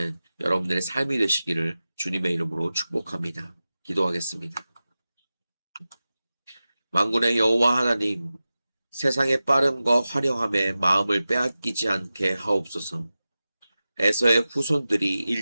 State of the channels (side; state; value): both; inverted; correlation -0.95